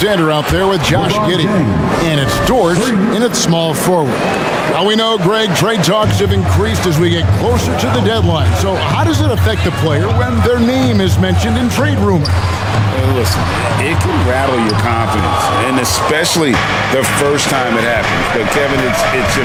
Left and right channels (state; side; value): identical; both; correlation 1.00